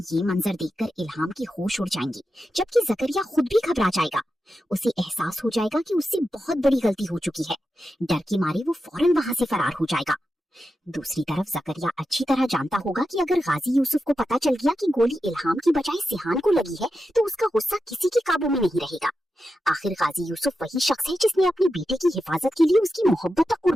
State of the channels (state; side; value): normal; both; correlation 0.89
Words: ये मंजर देखकर इल्हाम की होश उड़ जाएंगी, जबकि जकरिया खुद भी घबरा जाएगा। उसे एहसास हो जाएगा कि उससे बहुत बड़ी गलती हो चुकी है। डर के मारे वो फौरन वहां से फरार हो जाएगा। दूसरी तरफ जकरिया अच्छी तरह जानता होगा कि अगर गाजी यूसुफ को पता चल गया कि गोली इल्हाम की बजाय सिहान को लगी है तो उसका गुस्सा किसी के काबू में नहीं रहेगा। आखिर गाजी यूसुफ वही शख्स है जिसने अपने बेटे की हिफाजत के लिए उसकी मोहब्बत तक